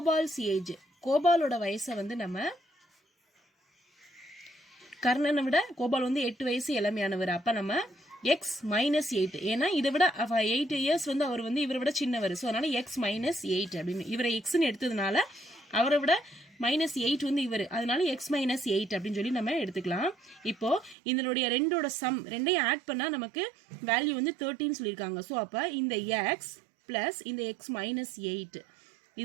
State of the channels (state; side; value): drops out; left; at 21.0 s